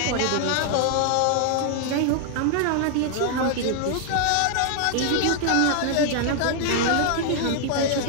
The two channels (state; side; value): different; both; correlation 0.00